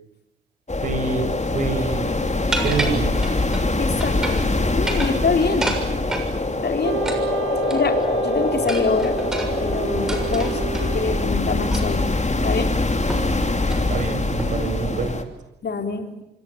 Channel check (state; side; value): normal; both; correlation 0.54